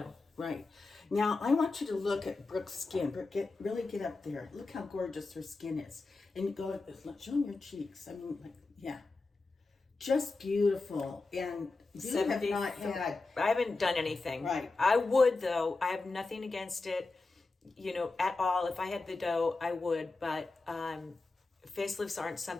Right. Now, I want you to look at Brooke's skin. Brooke, really get up there. Look how gorgeous her skin is. And go, show them your cheeks. I mean, just beautiful. And you have not had... I haven't done anything. Right. I would, though. I have nothing against it, you know, at all. If I had the dough, I would. But facelifts aren't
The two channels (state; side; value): quieter; right; 3.6 dB